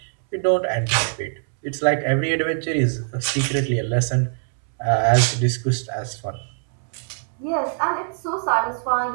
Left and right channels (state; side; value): silent; left; 64 dB below the other